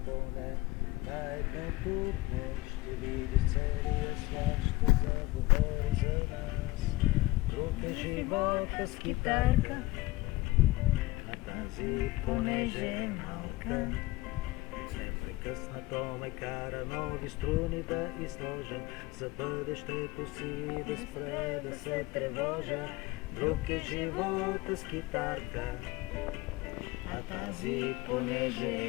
поне на едното дне ще видиш целия свят, ще заговори за нас. Друг е живота с китарка, а тази понеже е малка. Непрекъснато ме кара нови струни да изложа, за бъдещето си да спре да се тревожа. Друг е живота с китарка, а тази понеже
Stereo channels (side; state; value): right; quieter; 19.9 dB